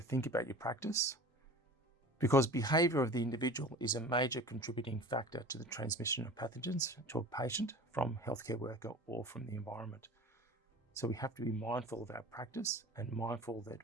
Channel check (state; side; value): normal; both; correlation 0.38